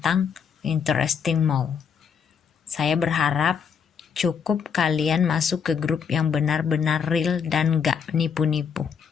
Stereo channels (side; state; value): right; quieter; 6.8 dB